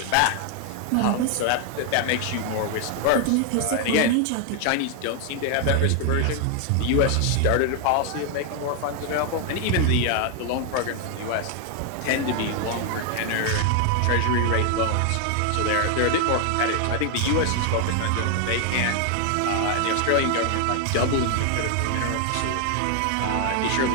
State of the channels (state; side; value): different; both; correlation 0.00